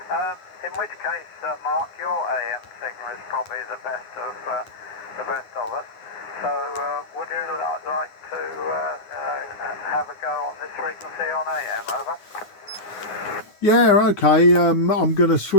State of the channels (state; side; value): late; right; 9.7 ms